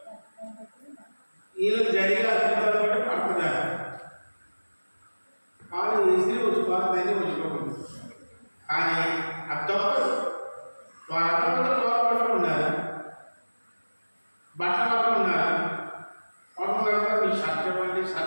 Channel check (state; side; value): inverted; both; correlation -1.00